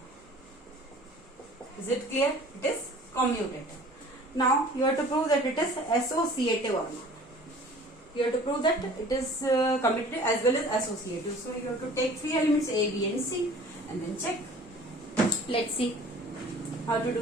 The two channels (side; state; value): both; normal; correlation 0.47